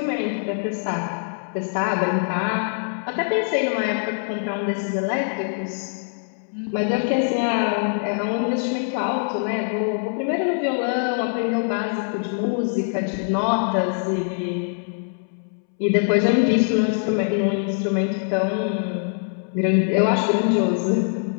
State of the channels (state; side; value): silent; right; 63 dB below the other